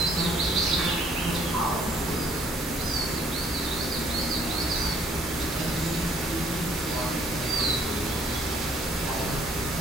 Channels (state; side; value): normal; both; correlation 0.62